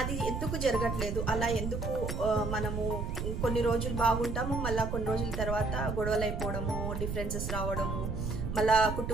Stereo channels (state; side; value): noise; right; rumble, 3 dB below the sound